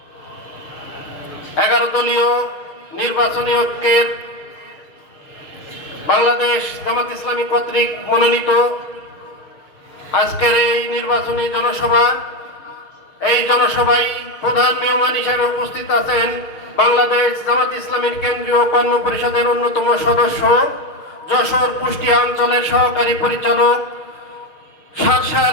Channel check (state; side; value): late; right; 6.6 ms